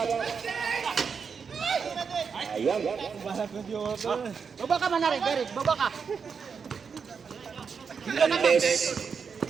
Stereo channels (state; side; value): quieter; left; 6.0 dB